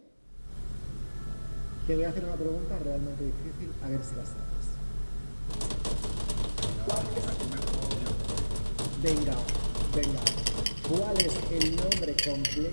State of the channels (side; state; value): both; inverted; correlation -1.00